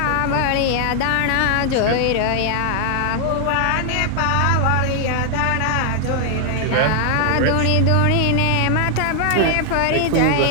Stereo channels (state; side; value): different; both; correlation 0.00